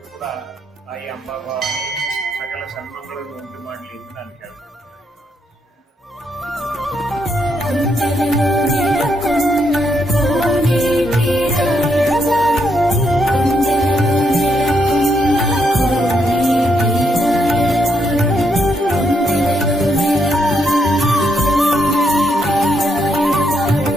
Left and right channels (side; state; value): both; normal; correlation 0.77